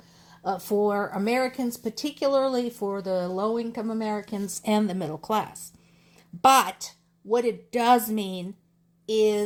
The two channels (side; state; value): both; identical; correlation 1.00